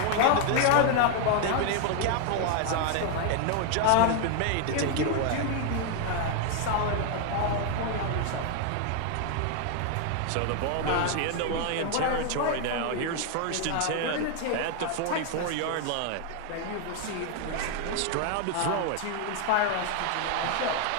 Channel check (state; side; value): different; both; correlation 0.00